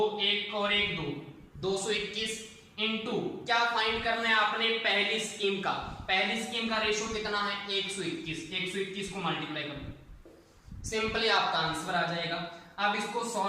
1 और 1 2 221 इनटू क्या फाइंड करना है आपने, पहली स्कीम का। पहली स्कीम का रेशो कितना है, 121 को मल्टीप्लाई कर दो, सिंपली आपका आंसर आ जाएगा। अब इसको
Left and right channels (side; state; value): both; identical; correlation 1.00